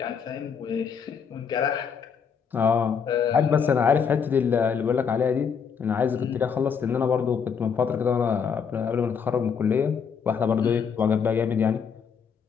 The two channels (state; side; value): quieter; right; 6.6 dB